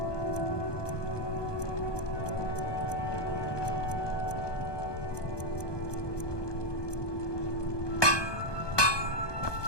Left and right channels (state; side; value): late; right; 1.2 ms